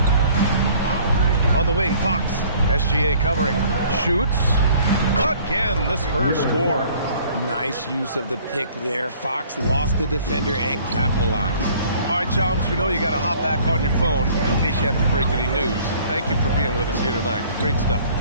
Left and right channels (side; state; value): both; inverted; correlation -0.54